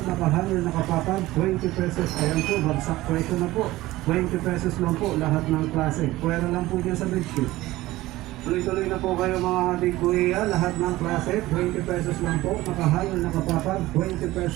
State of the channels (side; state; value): left; quieter; 17.6 dB